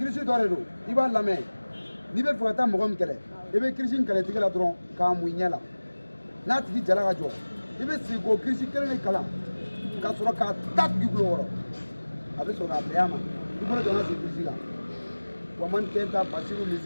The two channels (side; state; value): both; inverted; correlation -1.00